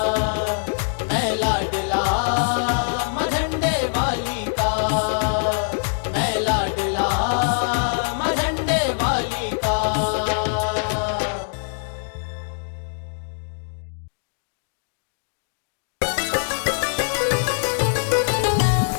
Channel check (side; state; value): right; silent; digital silence